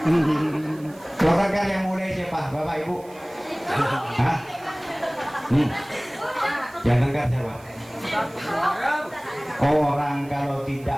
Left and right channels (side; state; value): right; noise; hiss, 25 dB below the sound